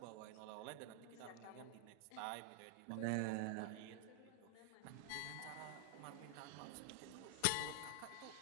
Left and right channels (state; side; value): different; both; correlation 0.00